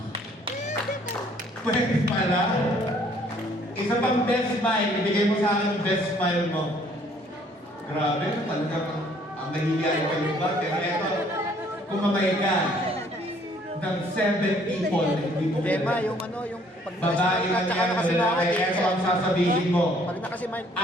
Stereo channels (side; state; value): both; normal; correlation 0.61